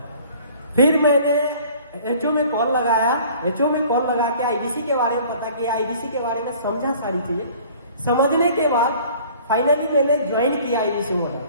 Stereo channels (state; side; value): inverted; both; correlation -0.50